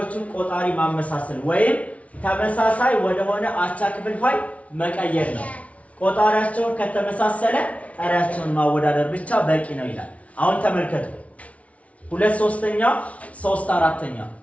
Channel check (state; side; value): late; right; 0.065 ms